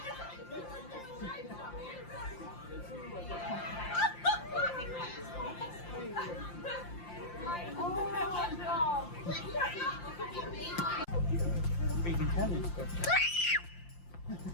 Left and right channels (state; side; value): late; right; 5.7 ms